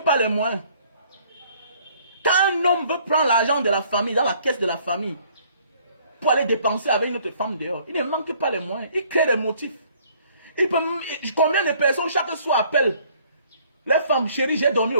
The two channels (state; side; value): inverted; both; correlation -0.60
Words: pas les moyens. Quand un homme veut prendre l'argent de la famille, dans la caisse de la famille, pour aller dépenser avec une autre femme dehors, il ne manque pas les moyens. Il crée des motifs. Combien de personnes chaque soir appellent les femmes, chérie, j'ai dormi